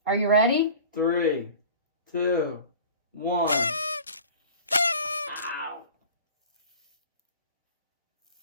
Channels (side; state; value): both; inverted; correlation -0.41